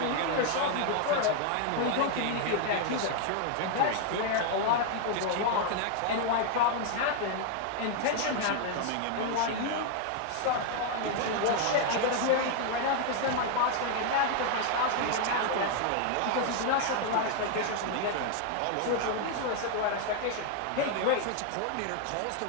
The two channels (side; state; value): both; different; correlation 0.00